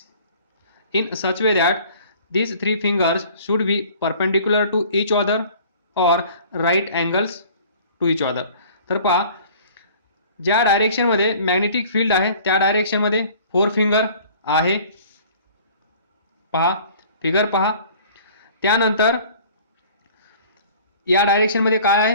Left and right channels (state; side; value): inverted; both; correlation -0.50